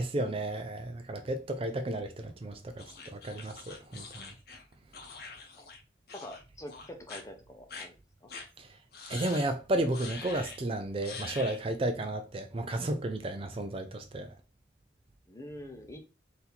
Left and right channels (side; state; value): both; normal; correlation 0.48